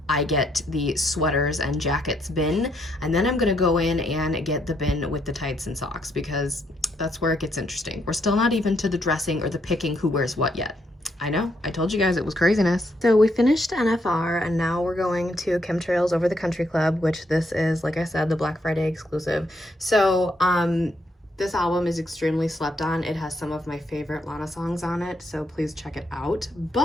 I get the sweaters and jackets bin, and then I'm gonna go in and get the bin with the tights and socks, because that's where it gets interesting. We're still not even to the dressing or the picking who wears what yet. I know, I told you guys it was craziness. So we finished NFR and now we're going to Chemtrails Over the Country Club, which this is, like I said, the Black Friday exclusive. So this album is extremely slept on. It has some of my favorite Lana songs on it, so please check it out.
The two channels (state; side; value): normal; both; correlation 0.75